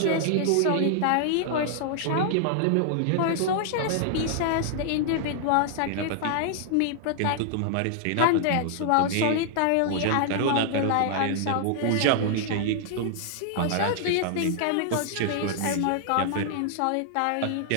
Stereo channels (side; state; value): both; different; correlation -0.01